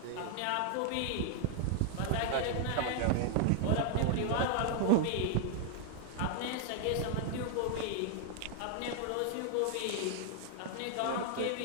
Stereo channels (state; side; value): different; both; correlation 0.00